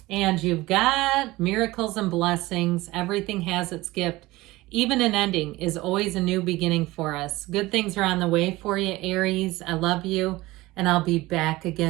And you've got miracles and blessings. Everything has its gift. Even an ending is always a new beginning for us. Good things are on the way for you, Aries. I love you. and I'll be back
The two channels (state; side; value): quieter; left; 19.4 dB